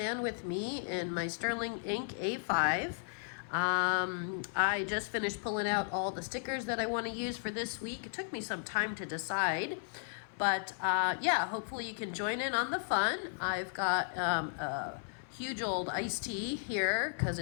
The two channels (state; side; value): silent; right; 54 dB below the other